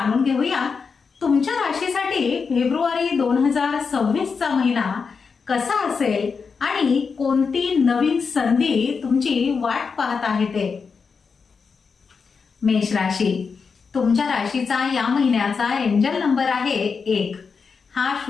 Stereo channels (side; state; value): right; quieter; 5.4 dB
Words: घेऊया तुमच्या राशीसाठी फेब्रुवारी 2026 चा महिना कसा असेल आणि कोणती नवीन संधी तुमची वाट पाहत आहे ते। मेष राशी, तुमच्या राशीचा या महिन्याचा एंजल नंबर आहे 1। हा